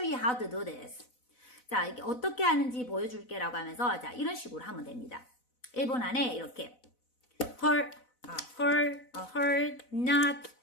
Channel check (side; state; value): right; late; 4.0 ms